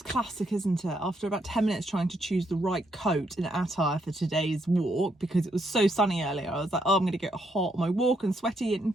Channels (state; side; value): normal; both; correlation 0.76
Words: classic, isn't it? After about 10 minutes trying to choose the right coat and attire for today's walk, because it was so sunny earlier, I was like, oh, I'm going to get hot on my walk and sweaty and